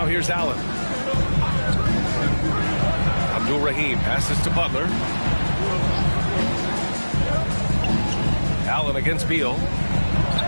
here's Allen. Abdul-Rahim passes to Butler. Allen against Beal.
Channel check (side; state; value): both; inverted; correlation -1.00